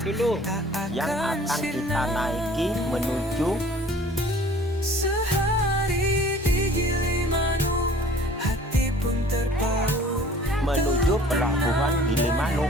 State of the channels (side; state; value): both; normal; correlation 0.50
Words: dulu. Yang akan kita naiki menuju Sehari di Gilimanuk, hati pun terpaut, menuju pelabuhan